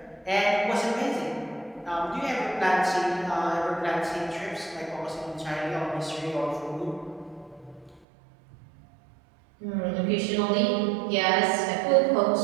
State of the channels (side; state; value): left; drops out; at 8.0 s